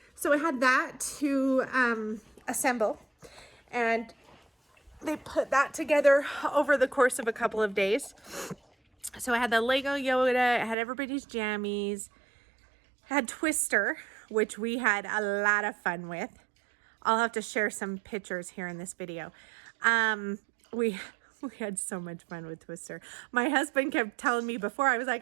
so I had that to assemble, and they put that together over the course of a couple of days. So I had the Lego Yoda, I had everybody's jammies, had Twister, which we had a lot of fun with. I'll have to share some pictures here in this video. We had so much fun with Twister. My husband kept telling me before, I was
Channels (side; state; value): left; drops out; at 10.8 s